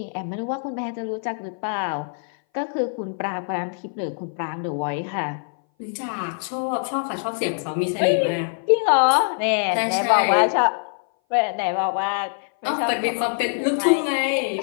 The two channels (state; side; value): silent; right; 59 dB below the other